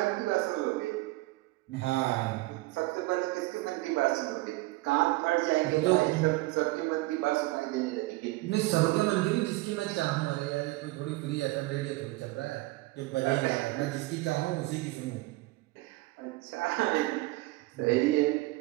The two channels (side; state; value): left; quieter; 20.7 dB